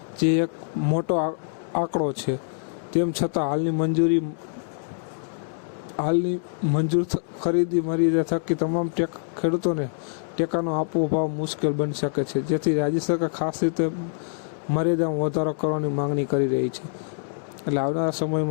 જે એક મોટો આંકડો છે। તેમ છતાં હાલની મંજૂર ખરીદી મર્યાદા થકી તમામ ખેડૂતોને ટેકાનો આપવો ભાવ મુશ્કેલ બની શકે છે, જેથી રાજ્ય સરકાર ખાસ રીતે મર્યાદામાં વધારો કરવાની માંગણી કરી રહી છે। એટલે આવનારા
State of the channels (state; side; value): silent; right; 62 dB below the other